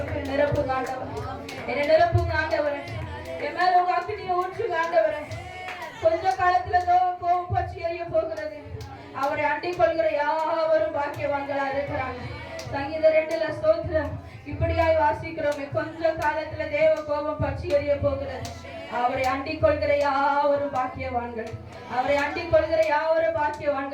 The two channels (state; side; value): identical; both; correlation 1.00